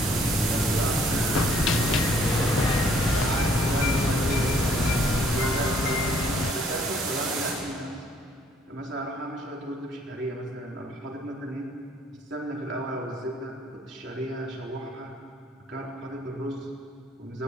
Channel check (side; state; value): both; normal; correlation 0.63